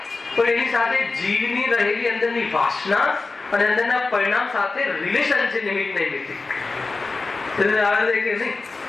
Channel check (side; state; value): right; quieter; 3.8 dB